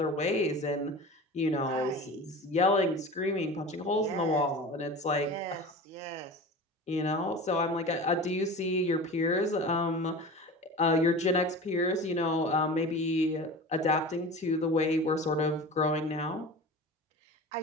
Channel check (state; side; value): normal; both; correlation 0.34